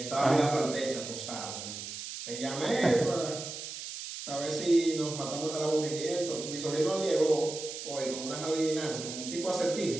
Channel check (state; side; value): noise; right; hiss, 8 dB below the sound